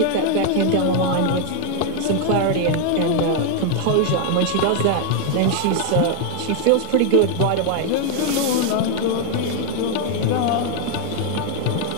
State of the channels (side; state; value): both; different; correlation 0.00